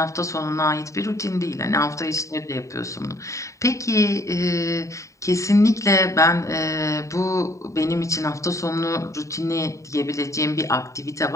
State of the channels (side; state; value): right; late; 0.15 ms